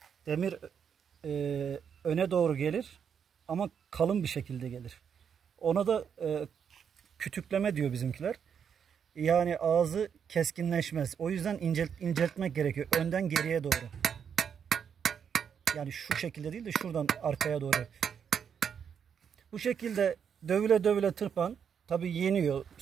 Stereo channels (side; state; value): left; quieter; 7.5 dB